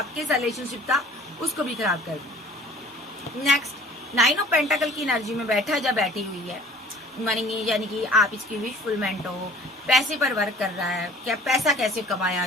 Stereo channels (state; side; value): normal; both; correlation 0.50